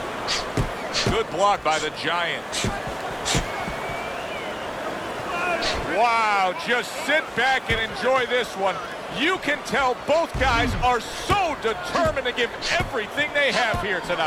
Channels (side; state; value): both; identical; correlation 1.00